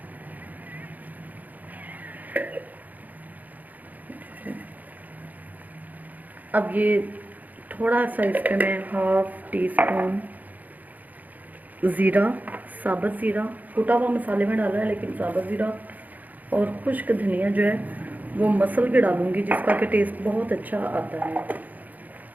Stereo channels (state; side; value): late; left; 0.081 ms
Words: अब ये थोड़ा सा इस पे मैं 1/2 टीस्पून ज़ीरा, साबुत ज़ीरा, कुटा हुआ मसाले में डाला है लेकिन साबुत ज़ीरा और खुश्क धनिया जो है वो मसल के डालूंगी, जिसका कि टेस्ट बहुत अच्छा आता है।